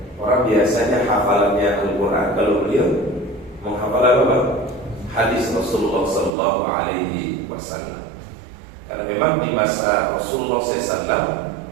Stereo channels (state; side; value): drops out; left; at 6.3 s